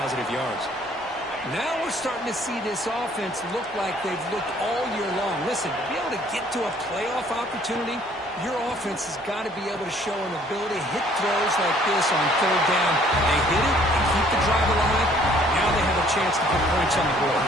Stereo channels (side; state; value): both; normal; correlation 0.59